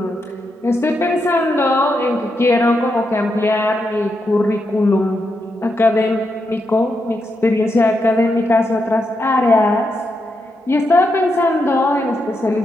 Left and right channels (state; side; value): normal; both; correlation 0.83